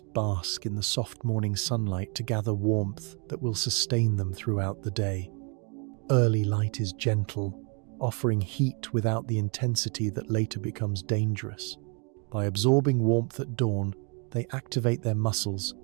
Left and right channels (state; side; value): quieter; left; 35.7 dB